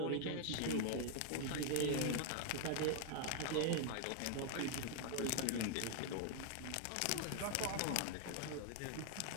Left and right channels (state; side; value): different; both; correlation 0.00